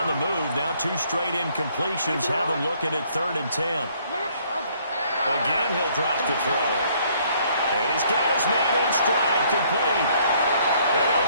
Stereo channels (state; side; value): inverted; both; correlation -0.64